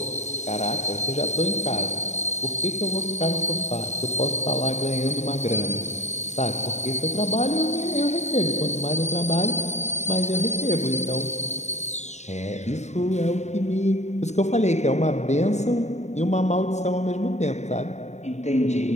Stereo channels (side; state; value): right; late; 0.33 ms